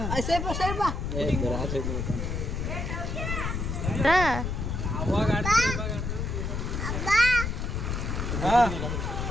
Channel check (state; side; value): noise; left; rumble, 2 dB below the sound